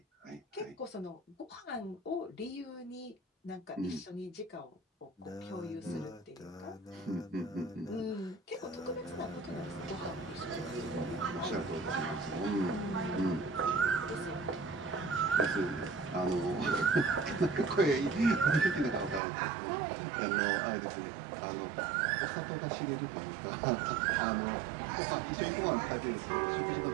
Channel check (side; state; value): left; drops out; at 19.2 s